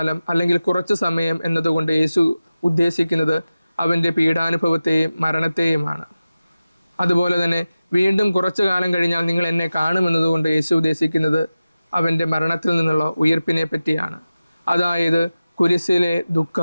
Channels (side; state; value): both; inverted; correlation -0.95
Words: അല്ലെങ്കിൽ കുറച്ചു സമയം എന്നതുകൊണ്ട് യേശു ഉദ്ദേശിക്കുന്നത് അവൻ്റെ പീഡാനുഭവത്തെയും മരണത്തെയുമാണ്. അതുപോലെ തന്നെ വീണ്ടും കുറച്ചു കാലം കഴിഞ്ഞാൽ നിങ്ങൾ എന്നെ കാണുമെന്നതുകൊണ്ട് യേശു ഉദ്ദേശിക്കുന്നത് അവൻ്റെ മരണത്തിൽ നിന്നുള്ള ഉയർപ്പിനെ പറ്റിയാണ്. അതായത് കുരിശിലെ